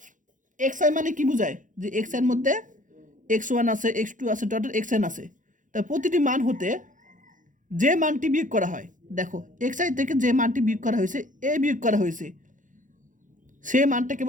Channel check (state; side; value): late; left; 0.37 ms